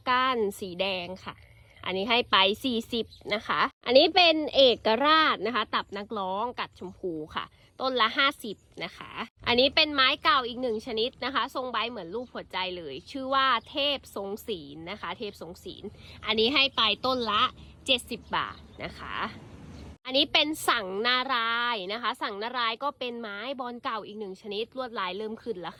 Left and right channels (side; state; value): both; identical; correlation 1.00